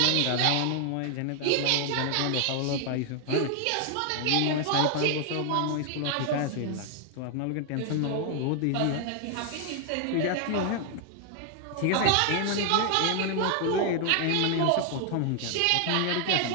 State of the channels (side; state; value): both; different; correlation 0.00